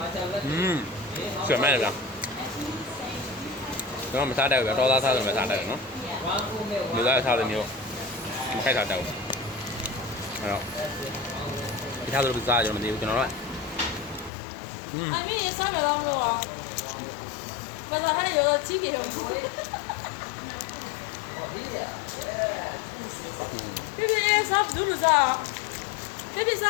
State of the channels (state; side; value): drops out; right; at 14.3 s